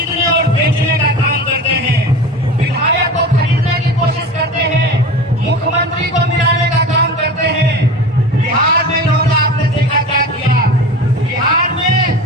और बेचने का काम करते हैं, विधायक को खरीदने की कोशिश करते हैं, मुख्यमंत्री को मिलाने का काम करते हैं। बिहार में इन्होंने आपने देखा क्या किया, बिहार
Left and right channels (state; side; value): normal; both; correlation 0.33